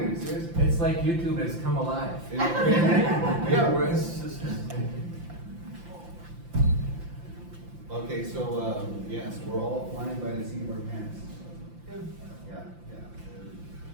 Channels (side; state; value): left; late; 5.8 ms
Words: seriously. it's like YouTube has come alive. Yeah, we're Okay, so, yes, we're all flying by the seat of our pants. Yeah.